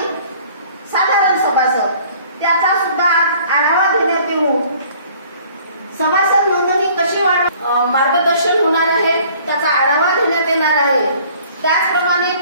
साधारण सभासद. त्याचा सुद्धा आढावा घेण्यात येऊन सभासद नोंदणी कशी मार्गदर्शन होणार आहे त्याचा आढावा घेण्यात येणार आहे. त्याचप्रमाणे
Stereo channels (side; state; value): both; inverted; correlation -0.54